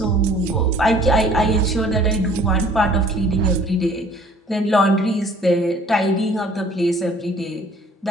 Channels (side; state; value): both; normal; correlation 0.54